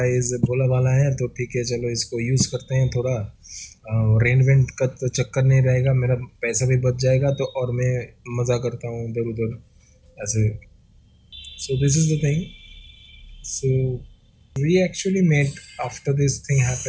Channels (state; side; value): identical; both; correlation 1.00